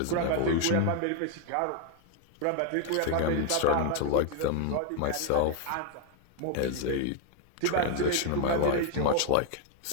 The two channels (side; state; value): both; different; correlation 0.01